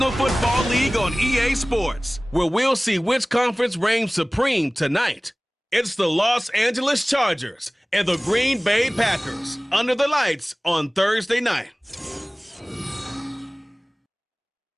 Football League on EA Sports, where we'll see which conference reigns supreme tonight. It's the Los Angeles Chargers and the Green Bay Packers under the lights on Thursday night.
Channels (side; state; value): both; normal; correlation 0.98